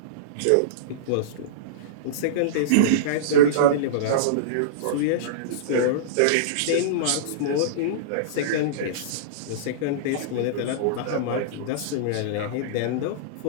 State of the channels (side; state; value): both; different; correlation -0.04